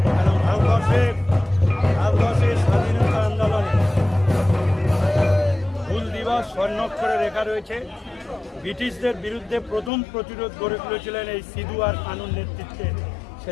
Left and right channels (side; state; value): right; drops out; at 9.9 s